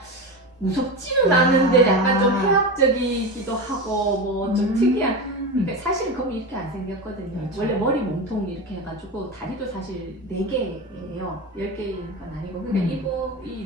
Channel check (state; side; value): normal; both; correlation 0.22